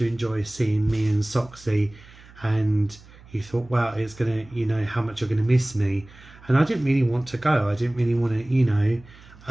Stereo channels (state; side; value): noise; right; hum, 23 dB below the sound